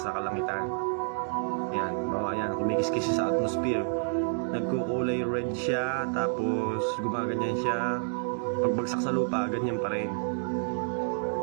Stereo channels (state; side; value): silent; left; digital silence